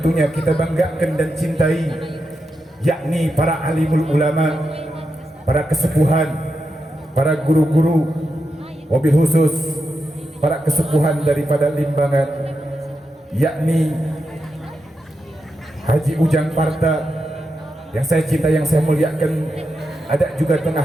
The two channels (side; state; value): both; normal; correlation 0.87